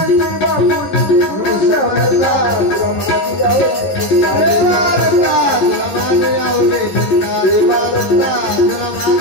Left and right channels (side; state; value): right; late; 11 ms